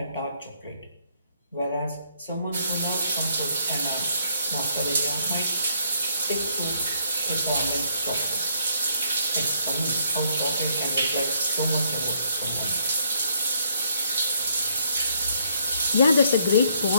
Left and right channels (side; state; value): both; inverted; correlation -0.68